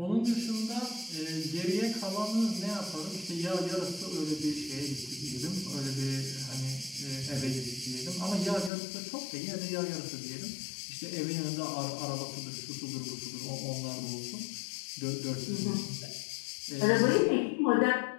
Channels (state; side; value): drops out; right; at 8.7 s